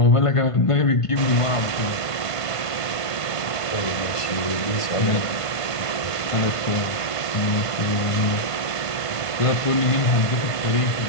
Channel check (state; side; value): late; right; 1.5 ms